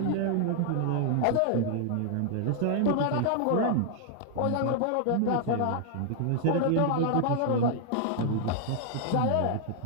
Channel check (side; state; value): both; different; correlation 0.00